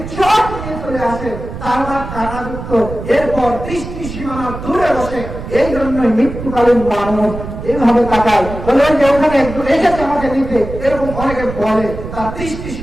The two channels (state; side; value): noise; right; rumble, 9 dB below the sound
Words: চট নিয়ে চলে আসে, তার কাঁটাযুক্ত। এরপর দৃষ্টি সীমানা দূরে বসে। এই জন্যই মৃত্যুকালীন মানুষ এইভাবে তাকায়, বলে যে ওখানে একজন এসেছে আমাকে নিতে, এরকম অনেকে বলে, তার দৃষ্টি